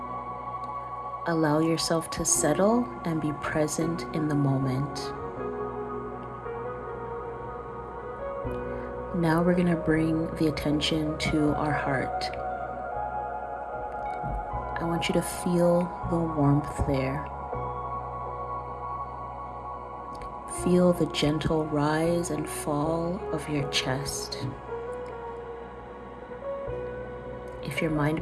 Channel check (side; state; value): both; identical; correlation 1.00